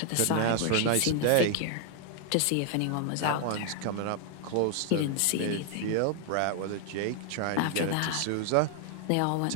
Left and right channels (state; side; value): different; both; correlation 0.00